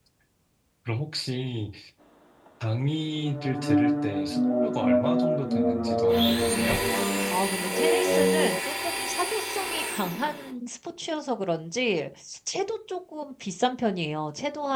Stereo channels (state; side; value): identical; both; correlation 1.00